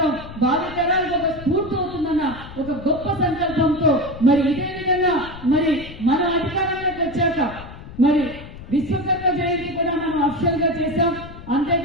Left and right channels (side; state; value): left; noise; rumble, 15 dB below the sound